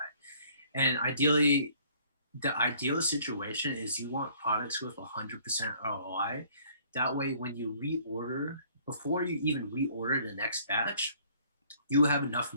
And ideally, the ideal situation is you want products with 100% ROI. That way, when you reorder, before you even reorder the next batch, you have enough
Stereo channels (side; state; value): both; inverted; correlation -0.58